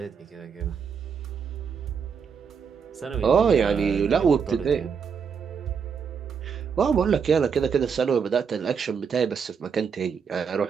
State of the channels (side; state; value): left; quieter; 6.4 dB